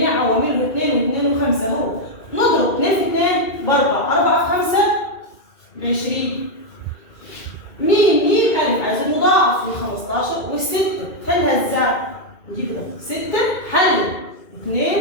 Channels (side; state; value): right; late; 2.4 ms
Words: عوامله 2 و2 و5 هو نضرب 2 في 2 ب 4، 4 في 5 ب 20. ميم ألف عايز المضاعف ل 15 والستة، حلها ازاي؟ نجيب كده 6 حل 2